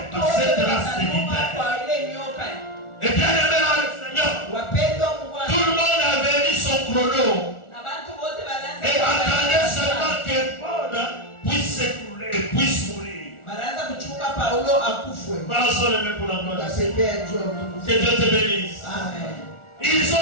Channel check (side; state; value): right; late; 1.4 ms